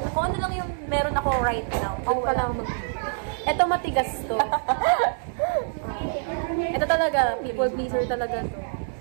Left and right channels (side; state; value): left; silent; digital silence